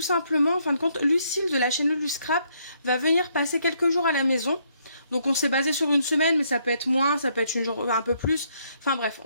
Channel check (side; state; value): both; inverted; correlation -0.71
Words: simplement, en fin de compte, Lucille de la chaîne Luluscrap va venir passer quelques jours à la maison. Donc on s'est basé sur une semaine, mais ça peut être moins, ça peut être un peu plus. Enfin bref,